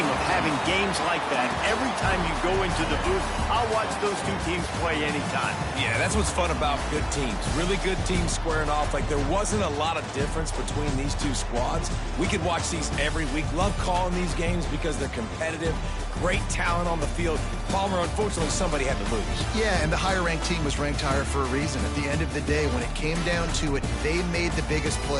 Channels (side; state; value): both; identical; correlation 1.00